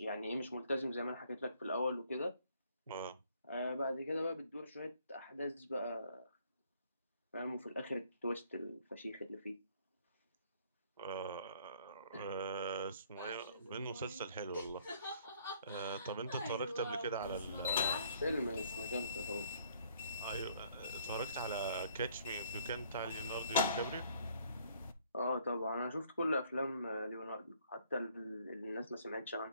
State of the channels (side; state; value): both; inverted; correlation -0.62